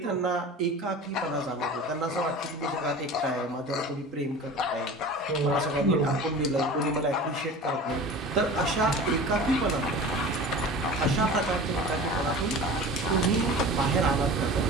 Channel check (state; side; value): normal; both; correlation 0.37